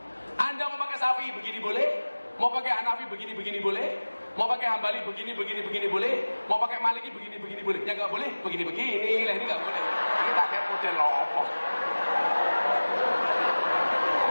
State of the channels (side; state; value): both; inverted; correlation -1.00